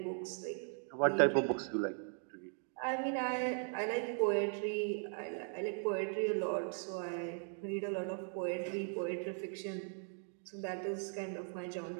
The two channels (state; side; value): silent; left; 52 dB below the other